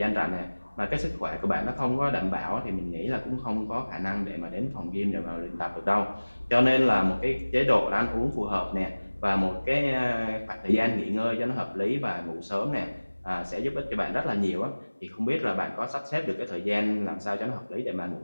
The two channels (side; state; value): both; inverted; correlation -1.00